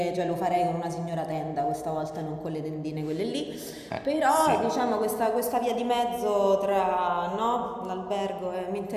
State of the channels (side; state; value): both; identical; correlation 1.00